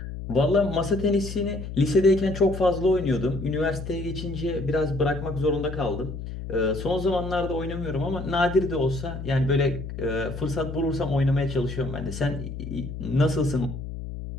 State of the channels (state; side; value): noise; left; hum, 8 dB below the sound